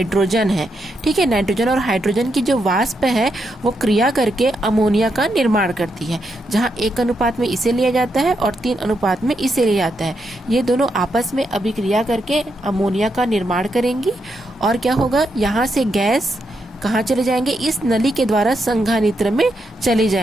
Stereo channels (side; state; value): both; normal; correlation 0.81